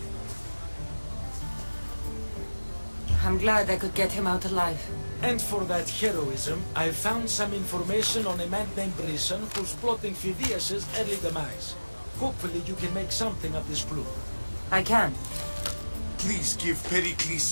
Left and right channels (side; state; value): both; inverted; correlation -1.00